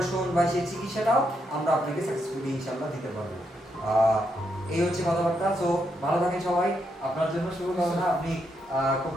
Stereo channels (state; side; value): normal; both; correlation 0.79